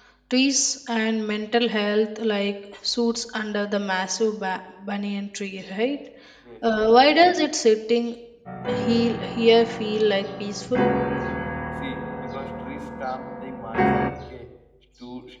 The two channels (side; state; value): both; identical; correlation 1.00